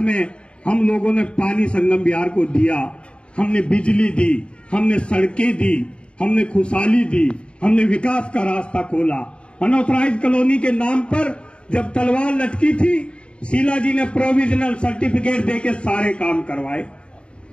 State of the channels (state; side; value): late; right; 0.056 ms